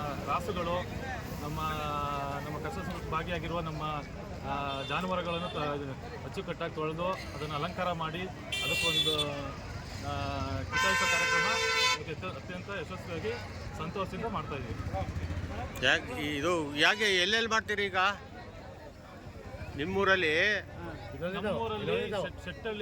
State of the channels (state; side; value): identical; both; correlation 1.00